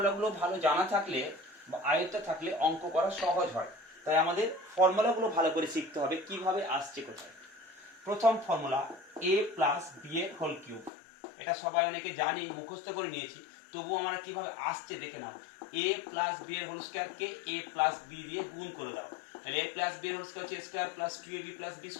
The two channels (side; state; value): right; drops out; at 10.9 s